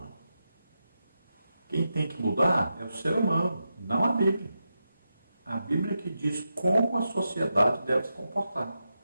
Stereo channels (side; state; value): both; inverted; correlation -0.88